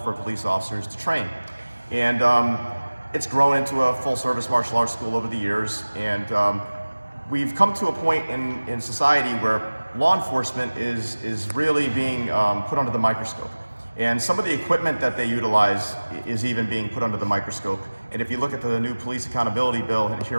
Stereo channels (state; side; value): inverted; both; correlation -1.00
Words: for police officers to train. And it's grown into a full-service martial arts school over the years. And we've come to a point in society where law enforcement is really being put under the microscope. And some of the equipment that they utilize is even being put under the microscope. And if you look at the new police accountability bill here